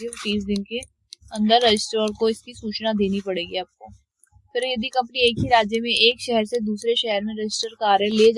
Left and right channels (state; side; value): identical; both; correlation 1.00